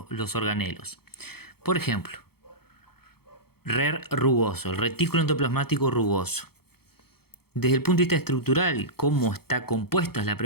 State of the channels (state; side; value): late; right; 0.96 ms